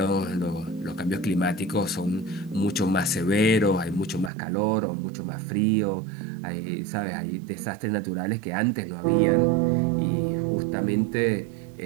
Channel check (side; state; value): left; drops out; at 4.3 s